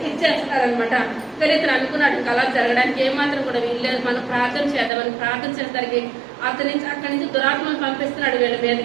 ఇచ్చేస్తారనమాట. కానీ ఇతను అనుకున్నాడు అలా జరగడానికి ఏమాత్రం కూడా వీల్లేదు, మనం ప్రార్థన చేద్దామని ప్రార్థన చేసేసరికి అక్కడి నుంచి దురాత్మను పంపిస్తున్నాడు. వీళ్ళ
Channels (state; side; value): drops out; left; at 4.9 s